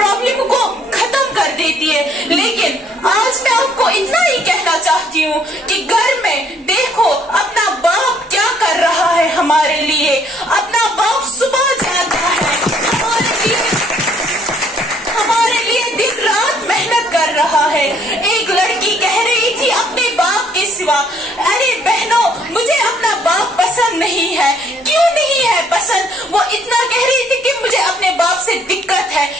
کو ختم کر دیتی ہے۔ لیکن آج میں آپ کو اتنا ہی کہنا چاہتی ہوں کہ گھر میں دیکھو اپنا باپ کیا کر رہا ہے ہمارے لیے، اپنا باپ صبح جاتا ہے ہمارے لیے دن رات محنت کر رہا ہے۔ ایک لڑکی کہہ رہی تھی اپنے باپ کے سوا، ارے بہنوں مجھے اپنا باپ پسند نہیں ہے۔ کیوں نہیں ہے پسند؟ وہ اتنا کہہ رہی تھی کہ مجھے اپنے باپ سے دقت ہے۔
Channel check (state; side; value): normal; both; correlation 0.64